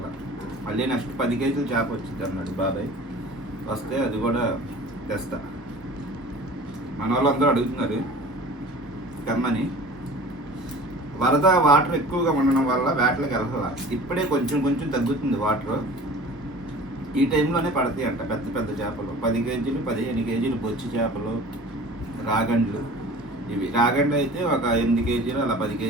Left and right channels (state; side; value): normal; both; correlation 0.42